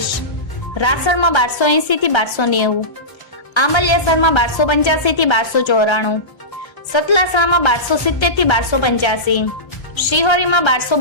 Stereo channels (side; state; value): right; late; 1.3 ms